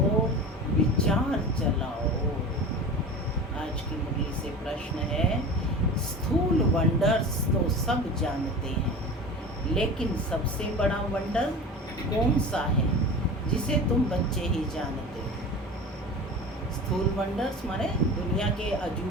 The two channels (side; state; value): both; normal; correlation 0.33